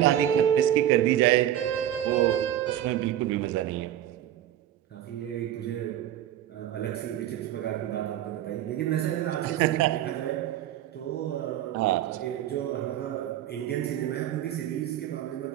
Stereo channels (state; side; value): quieter; left; 11.8 dB